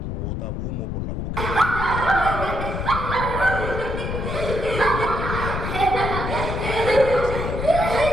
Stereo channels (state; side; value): noise; left; rumble, 3 dB below the sound